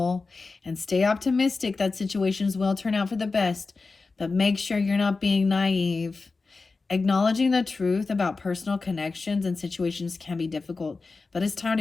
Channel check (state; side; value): quieter; right; 4.0 dB